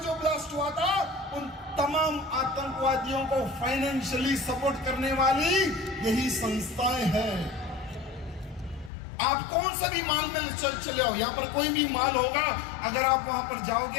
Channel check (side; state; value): right; drops out; at 8.9 s